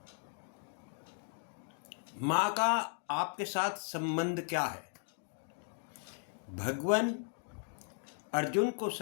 माँ का आपके साथ संबंध क्या है? भगवान अर्जुन को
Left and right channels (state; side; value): silent; right; 53 dB below the other